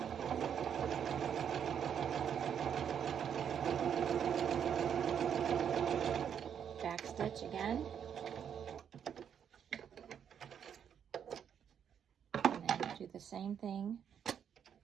back stitch again, and then do the same thing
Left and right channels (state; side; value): quieter; left; 8.2 dB